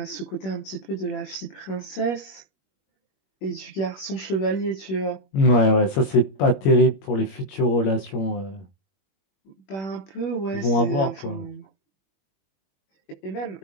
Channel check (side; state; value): right; late; 21 ms